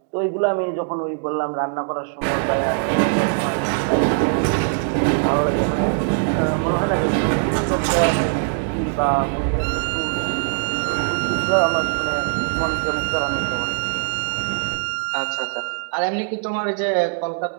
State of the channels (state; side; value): silent; left; 64 dB below the other